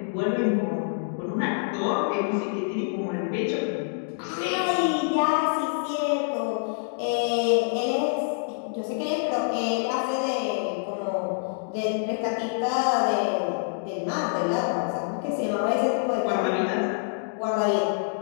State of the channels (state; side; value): silent; right; digital silence